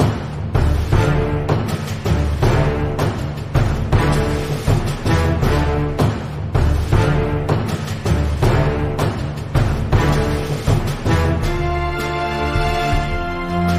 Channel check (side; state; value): both; identical; correlation 1.00